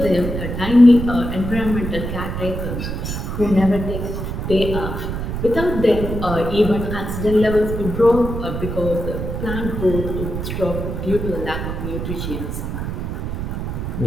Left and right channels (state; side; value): noise; right; rumble, 4 dB below the sound